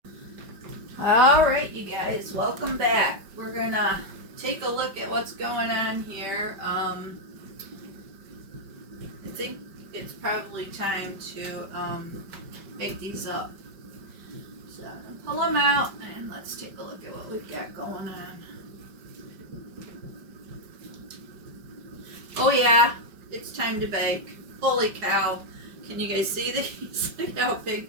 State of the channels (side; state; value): left; late; 5.1 ms